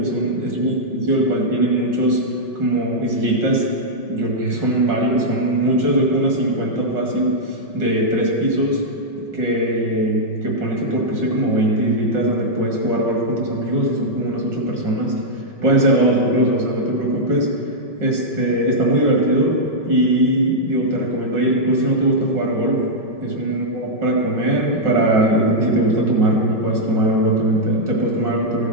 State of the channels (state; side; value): late; left; 5.2 ms